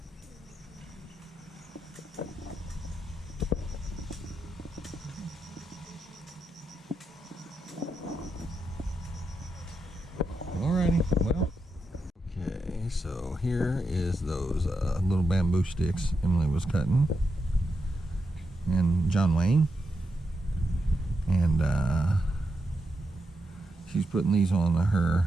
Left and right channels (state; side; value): normal; both; correlation 0.85